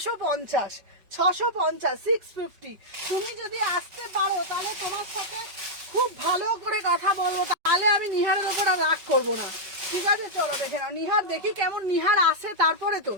650, 650। তুমি যদি আসতে পারো তাহলে তোমার সাথে খুব ভালো করে কথা বলবো, তাহলে আমি নিহারের ওপর আর রাগ করবো না, ঠিক আছে? চলো দেখে নাও নিহার, দেখি কেমন নিহার আসে, তারপরে তো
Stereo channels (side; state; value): left; late; 5.3 ms